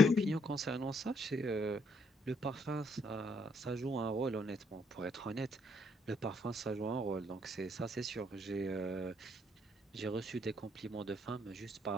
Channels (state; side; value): normal; both; correlation 0.70